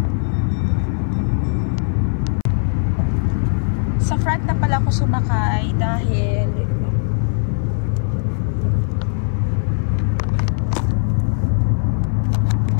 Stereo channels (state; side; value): silent; right; 57 dB below the other